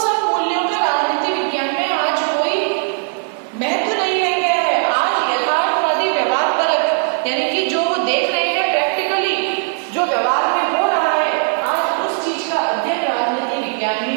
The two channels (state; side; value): silent; left; 59 dB below the other